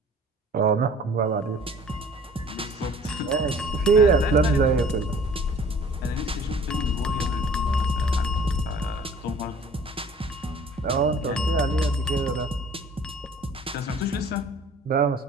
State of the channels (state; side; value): normal; both; correlation 0.50